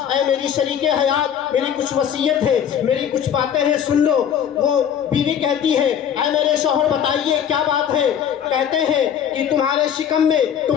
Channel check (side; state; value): right; quieter; 8.9 dB